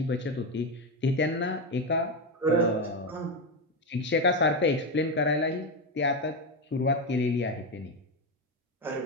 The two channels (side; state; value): both; normal; correlation 0.12